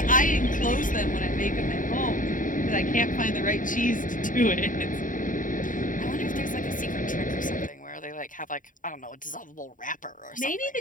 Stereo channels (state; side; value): late; right; 0.38 ms